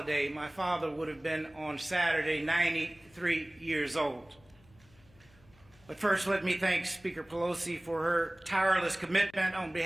My father would have been on Saturday 93 years old. But first, let me thank Speaker Pelosi for her tireless commitment on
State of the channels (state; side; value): noise; left; hum, 28 dB below the sound